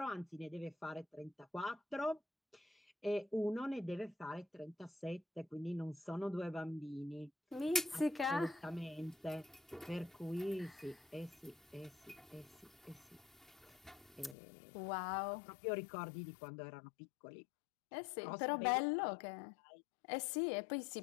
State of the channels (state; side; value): drops out; right; at 14.4 s